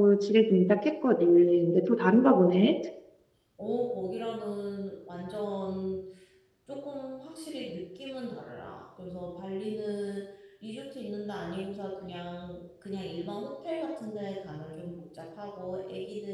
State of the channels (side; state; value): both; identical; correlation 1.00